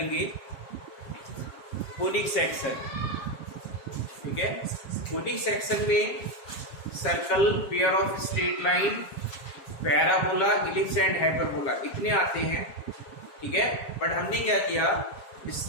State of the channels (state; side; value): late; right; 7.3 ms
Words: कोनिक सेक्शन। ठीक है, कोनिक सेक्शन में circle, pair of straight line, parabola, ellipse and hyperbola इतने आते हैं। ठीक है, बट हमने क्या किया,